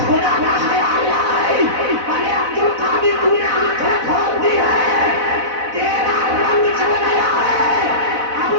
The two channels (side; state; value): left; late; 4.0 ms